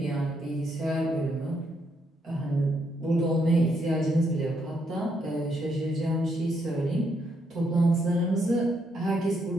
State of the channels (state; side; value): normal; both; correlation 0.76